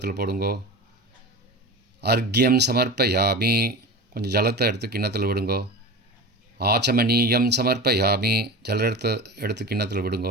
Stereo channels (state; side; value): normal; both; correlation 0.30